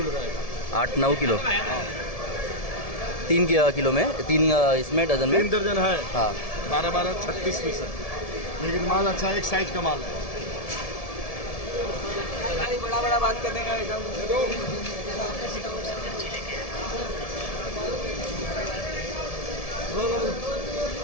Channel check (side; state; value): right; late; 1.7 ms